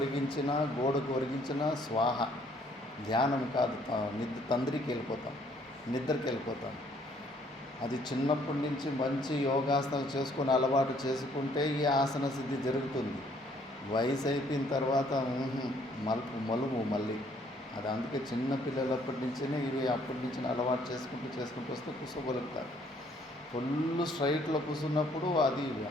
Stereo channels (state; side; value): normal; both; correlation 0.63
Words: గోడకు ఒరిగించిన స్వాహ. ధ్యానం కాదు, నిద్రకి వెళ్ళిపోతాం. అది చిన్నప్పటి నుంచి మంచి యోగాసనాలు చేసుకొని అలవాటు చేసుకుంటే ఈ ఆసన సిద్ధి జరుగుతుంది. వయసు అయిపోయిన తర్వాత మలుపు మళ్ళీ అది. అందుకే చిన్న పిల్లలప్పటి నుంచినే ఇవి అప్పటి నుంచి అలవాటు చేసుకుంటూ వస్తే కూర్చోగలుగుతారు. ఫుల్ స్ట్రైట్లో కూర్చున్నప్పుడు అది